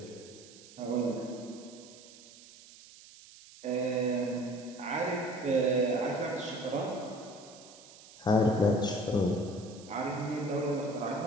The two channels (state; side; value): noise; right; hiss, 20 dB below the sound